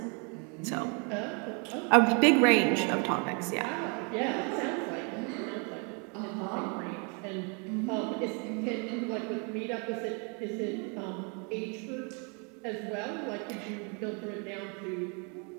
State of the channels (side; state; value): left; quieter; 35.3 dB